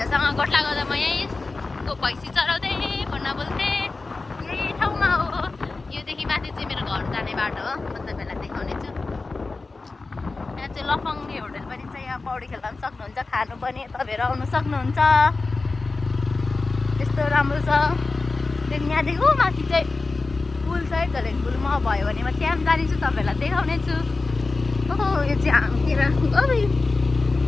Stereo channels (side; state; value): right; quieter; 3.7 dB